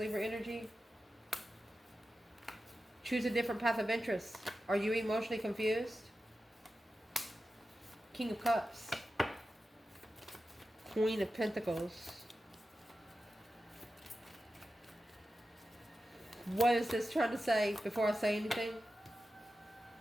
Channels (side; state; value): both; normal; correlation 0.92